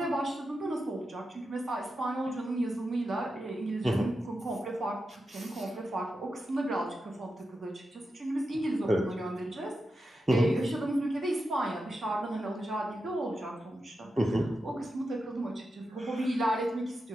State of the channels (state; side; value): normal; both; correlation 0.89